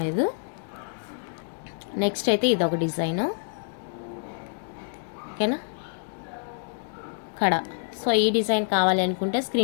లేదు. నెక్స్ట్ అయితే ఇదొక డిజైను. ఓకేనా, కడా. సో ఈ డిజైన్ కావాలి అనుకుంటే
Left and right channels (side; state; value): right; silent; digital silence